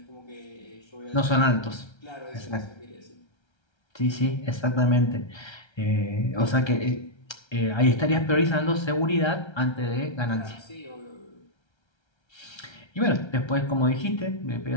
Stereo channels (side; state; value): right; late; 1.3 ms